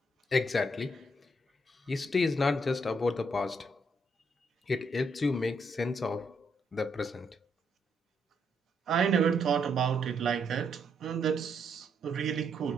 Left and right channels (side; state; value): both; normal; correlation 0.75